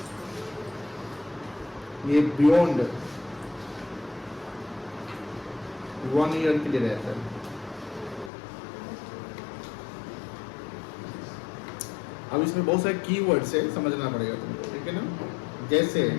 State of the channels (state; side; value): drops out; right; at 8.3 s